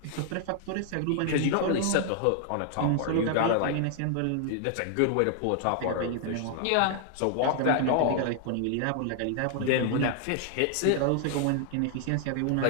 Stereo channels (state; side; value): different; both; correlation 0.00